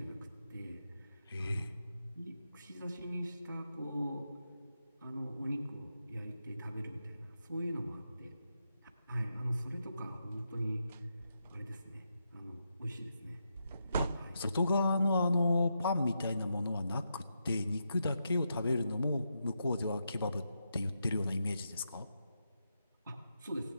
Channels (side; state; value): both; inverted; correlation -0.85